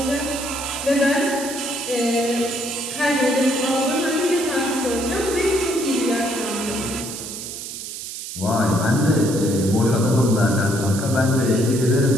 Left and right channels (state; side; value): noise; right; hiss, 9 dB below the sound